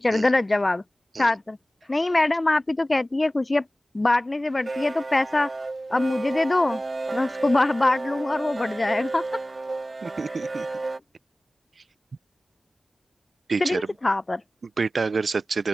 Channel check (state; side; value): normal; both; correlation 0.97